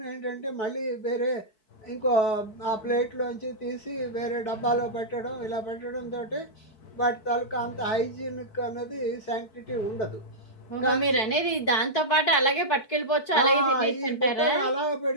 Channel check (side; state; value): right; late; 4.6 ms